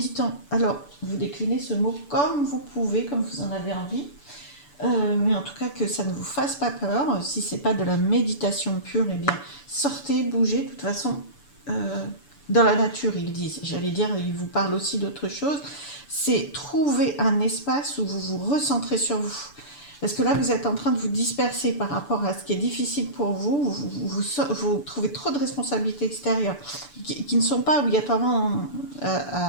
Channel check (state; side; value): late; right; 6.9 ms